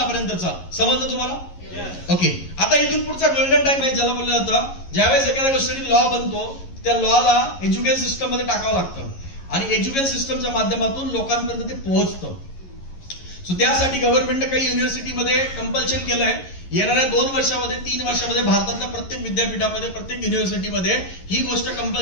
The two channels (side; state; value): right; late; 11 ms